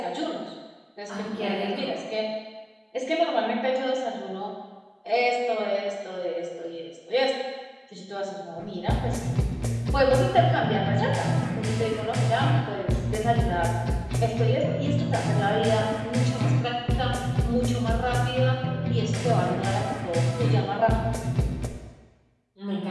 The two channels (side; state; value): both; identical; correlation 1.00